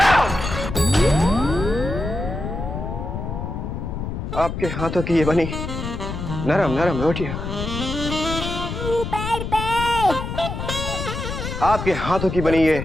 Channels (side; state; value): left; noise; rumble, 5 dB below the sound